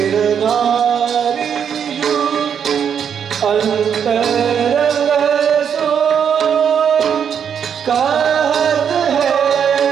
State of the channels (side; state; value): left; quieter; 7.8 dB